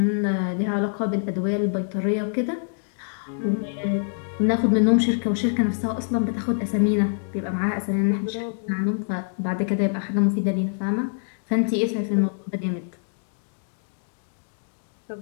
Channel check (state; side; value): silent; right; digital silence